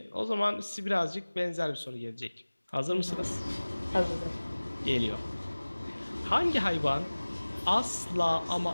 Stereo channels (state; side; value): inverted; both; correlation -1.00